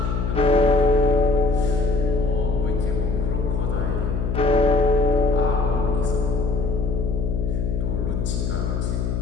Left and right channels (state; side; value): noise; left; hum, 1 dB below the sound